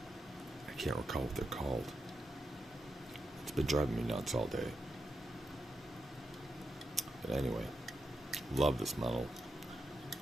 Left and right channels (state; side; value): normal; both; correlation 0.86